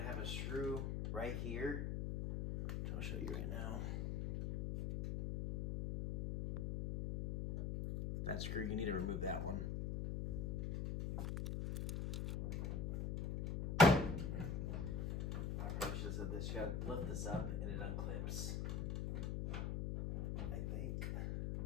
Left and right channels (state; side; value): noise; left; hum, 1 dB below the sound